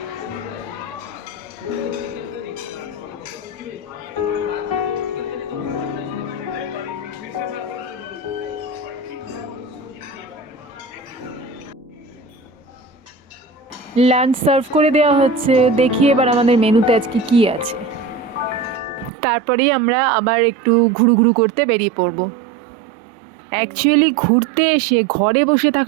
লাঞ্চ সার্ভ করে দেওয়া হচ্ছে। দেখি এবার আমাদের মেনুতে আজকে কি আছে, তারপরেই আমরা আবার একটু ঘুরু করতে বেরিয়ে পড়ব। অ্যাকচুয়ালি ঘুরতে এসে ঘরে বসে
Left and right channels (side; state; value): left; drops out; at 19.1 s